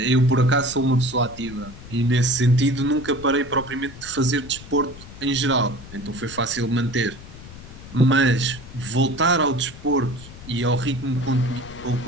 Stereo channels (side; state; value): left; noise; rumble, 16 dB below the sound